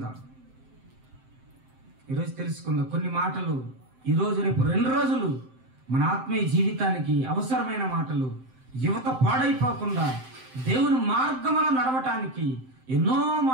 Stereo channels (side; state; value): left; late; 7.7 ms